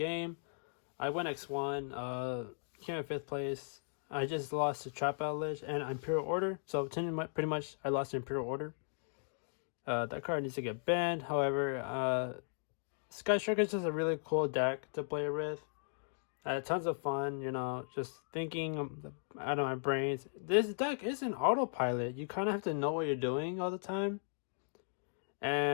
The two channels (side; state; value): right; silent; digital silence